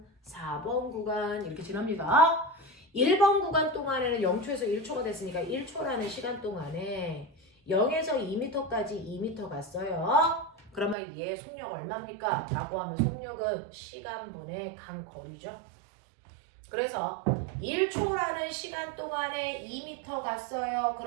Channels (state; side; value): drops out; left; at 11.0 s